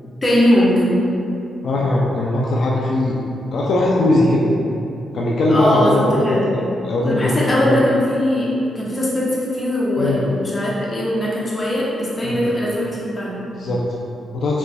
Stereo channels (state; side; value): normal; both; correlation 0.82